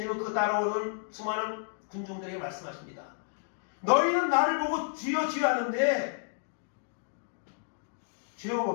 그 따라오는 수많은 군중들에게 말씀하십니다. 너희는 나를 보고 주여 주여 하는데 주여가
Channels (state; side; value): silent; right; digital silence